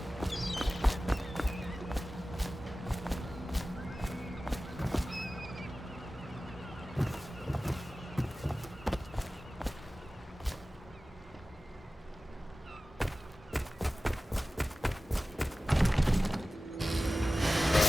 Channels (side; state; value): both; normal; correlation 0.96